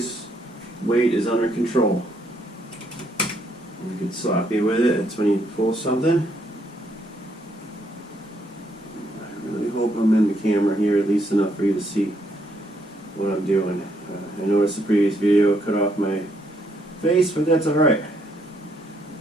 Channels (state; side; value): normal; both; correlation 0.73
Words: weight is under control. You get sloppy with it. It's when you pull something. I really hope I'm in the camera here at least enough for you to see what I'm doing. I noticed the previous video cut off my face, but that's alright.